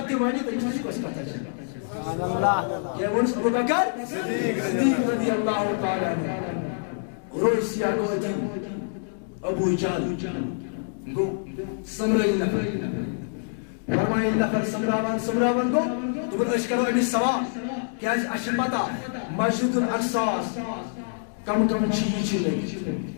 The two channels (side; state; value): right; silent; digital silence